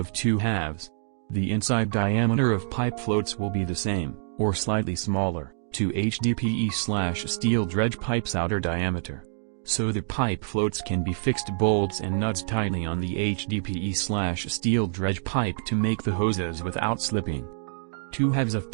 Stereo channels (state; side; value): silent; left; 61 dB below the other